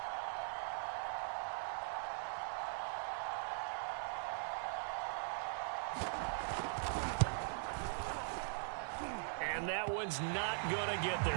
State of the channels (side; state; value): left; silent; digital silence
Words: And that one's not going to get